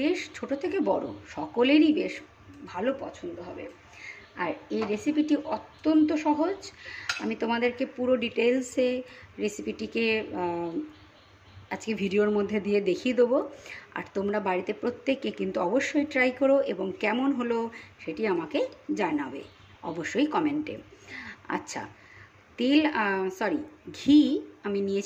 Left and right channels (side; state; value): both; identical; correlation 1.00